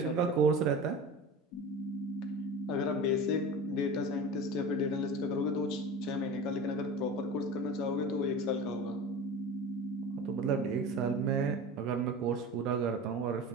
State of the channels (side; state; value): both; normal; correlation 0.33